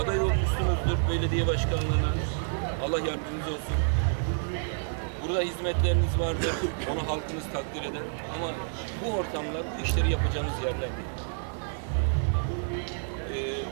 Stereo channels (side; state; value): left; silent; 59 dB below the other